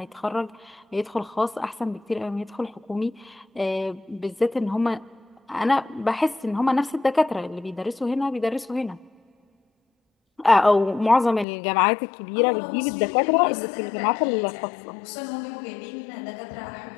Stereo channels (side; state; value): right; drops out; at 11.5 s